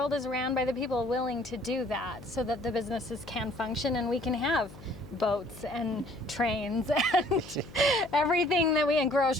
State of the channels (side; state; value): left; noise; hum, 18 dB below the sound